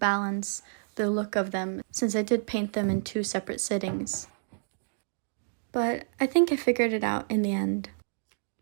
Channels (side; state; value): left; silent; digital silence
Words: the look of them since I did paint them in 2 separate sittings. But I think I figured it out in the end.